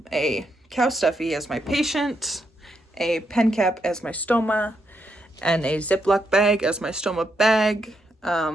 cow stuffy as my patient, a pen cap as my stoma, and a Ziploc bag as my stoma bag,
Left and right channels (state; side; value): normal; both; correlation 0.80